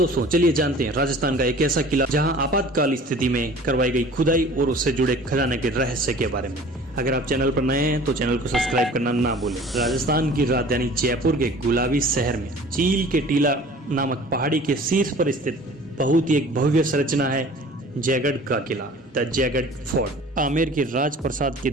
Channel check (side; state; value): both; normal; correlation 0.46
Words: चलिए जानते हैं राजस्थान का एक ऐसा किला जहां आपातकाल स्थिति में करवाई गई खुदाई और उससे जुड़े खजाने के रहस्य के बारे में। अगर आप चैनल पर नए हैं तो चैनल को सब्सक्राइब करना ना भूलें। राजस्थान की राजधानी जयपुर के गुलाबी शहर में चील के टीला नामक पहाड़ी के शीर्ष पर स्थित बहुत ही एक भव्य संरचना है जयगढ़ का किला, द जयगढ़ फोर्ट। आमेर के राजप्रसाद के